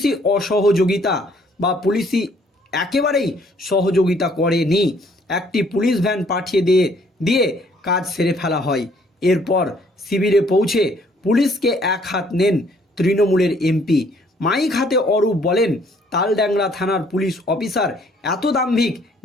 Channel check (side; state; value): both; normal; correlation 0.63